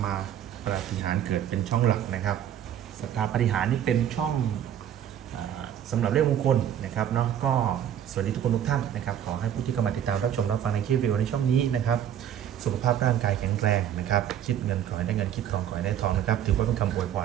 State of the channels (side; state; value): left; quieter; 10.1 dB